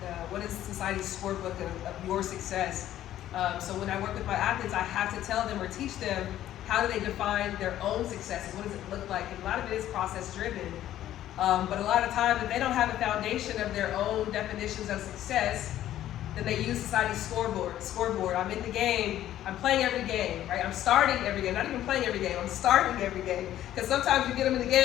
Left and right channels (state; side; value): quieter; right; 12.6 dB